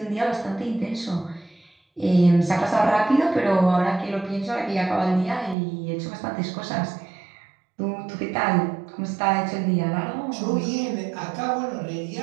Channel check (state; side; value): drops out; left; at 5.6 s